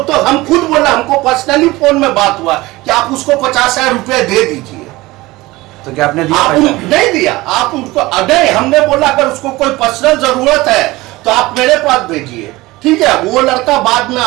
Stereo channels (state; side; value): quieter; left; 20.0 dB